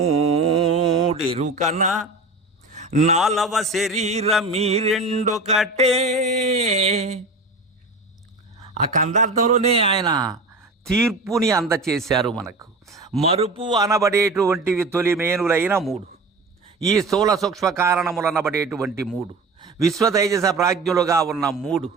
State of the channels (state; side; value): quieter; left; 3.1 dB